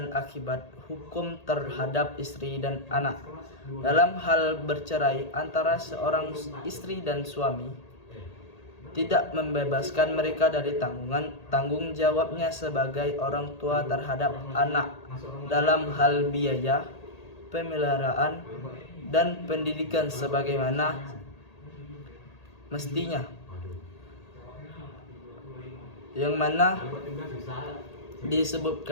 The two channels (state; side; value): late; right; 1.8 ms